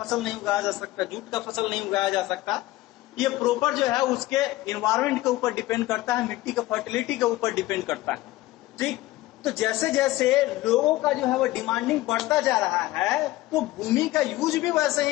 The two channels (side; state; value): right; quieter; 17.6 dB